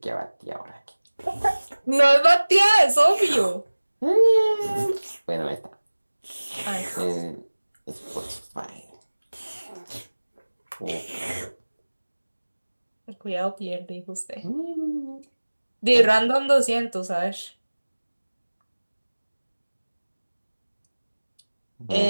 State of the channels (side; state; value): both; inverted; correlation -1.00